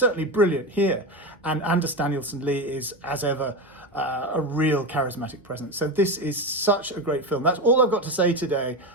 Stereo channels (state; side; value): normal; both; correlation 0.19